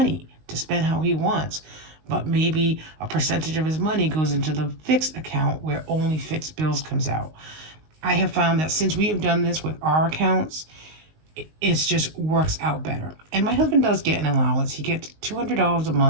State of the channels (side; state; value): left; late; 19 ms